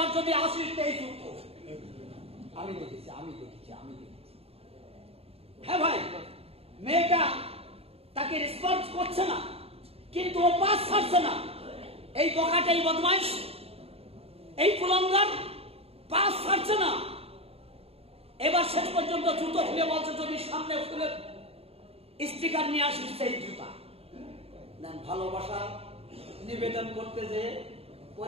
যদি আসিস এই জুতো। আমি দেখেছি। হ্যাঁ ভাই, মেয়েটা তাকে রেসপন্স করছে না, কিন্তু ও পাস ছাড়ছে না। এই বোকাটাই বদমাইশ, এই কুলাঙ্গার পাস ছাড়ছে না। এবার শেষ পর্যন্ত জুতো খুলে বলছে যদি সামনে ফুলের স্টিকার নিয়ে আসিস সেই জুতা। ভালোবাসা নিবেদন করতে যে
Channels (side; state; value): left; late; 0.29 ms